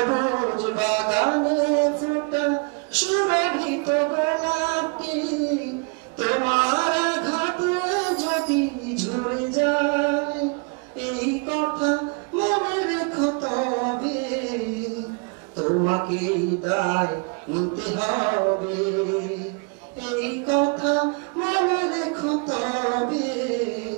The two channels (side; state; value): left; quieter; 33.8 dB